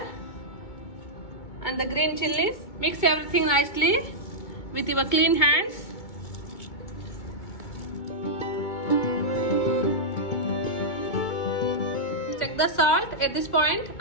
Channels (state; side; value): late; right; 2.2 ms